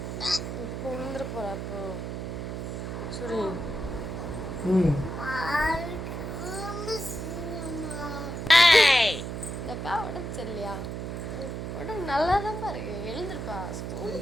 இப்போ விழுந்துட போகிறா. அப்போ சரி இந்தக்கா உடம்பு சரியில்லையா? உடம்பு நல்லா தான் பாருங்க. எழுந்துருப்பா,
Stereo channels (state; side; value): noise; right; hum, 5 dB below the sound